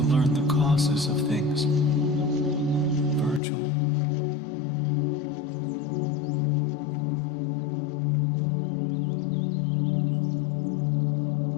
learn the causes of things. Virgil.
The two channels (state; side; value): drops out; right; at 3.4 s